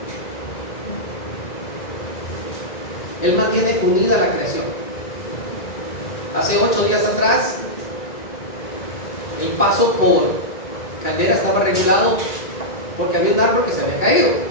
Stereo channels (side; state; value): right; late; 1.9 ms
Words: Él mantiene unida la creación. Hace 8 días atrás, el paso por Caldera estaba regulado porque había un árbol que se había caído.